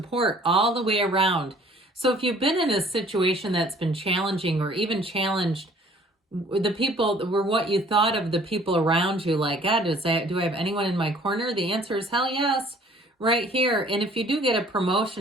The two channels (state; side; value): normal; both; correlation 0.55